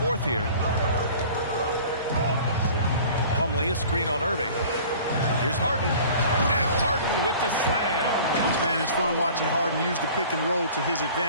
here. Plumlee, a screen on Irving. Here's Harden. And Harden with the slam. Man, it's fun watching Harden use the pick and roll to his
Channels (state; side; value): inverted; both; correlation -0.45